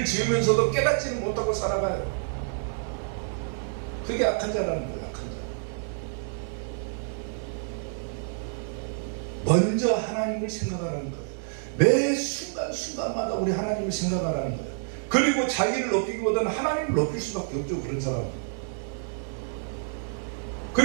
지으면서도 깨닫지는 못하고 살아가요. 그게 악한 자라는 거예요. 악한 자. 먼저 하나님을 생각하라는 거예요. 매 순간순간마다 우리 하나님을 생각하라는 거예요. 그리고 자기를 높이기보다는 하나님을 높일 수밖에 없죠. 그런 사람은.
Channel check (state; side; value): silent; left; digital silence